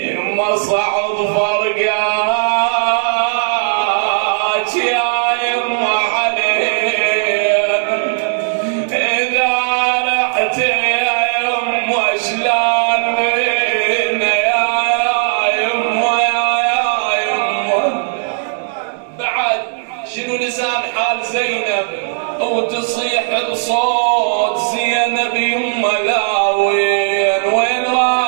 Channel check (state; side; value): silent; left; digital silence